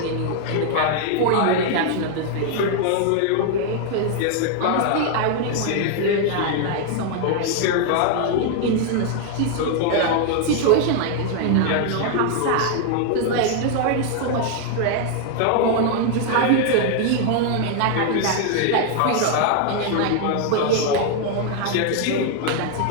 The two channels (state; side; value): different; both; correlation 0.00